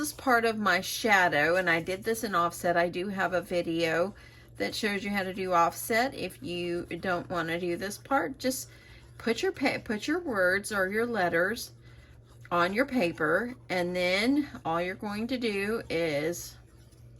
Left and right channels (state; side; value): identical; both; correlation 1.00